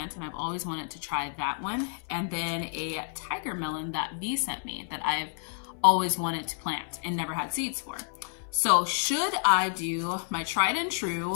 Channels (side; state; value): right; silent; 58 dB below the other